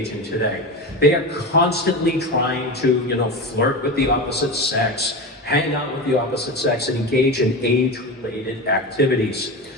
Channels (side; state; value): both; normal; correlation 0.23